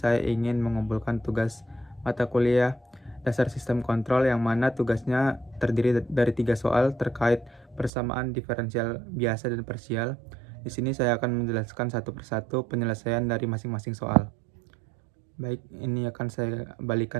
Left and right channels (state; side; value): drops out; left; at 7.9 s